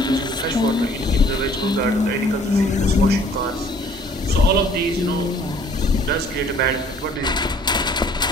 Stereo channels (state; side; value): normal; both; correlation 0.56